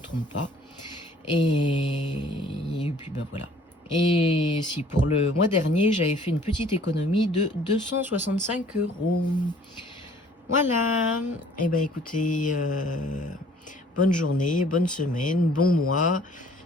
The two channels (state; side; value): normal; both; correlation 0.56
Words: pas. Et puis ben voilà. Et si pour le mois dernier, j'avais fait une petite économie de 265 €. Voilà, et ben écoutez, bonne journée, bonne semaine, bon mois.